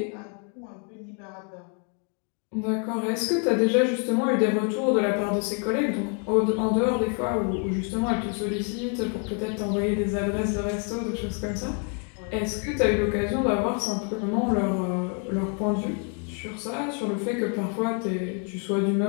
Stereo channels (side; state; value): right; quieter; 39.7 dB